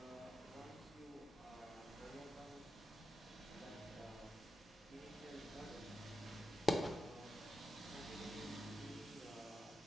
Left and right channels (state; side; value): normal; both; correlation 0.90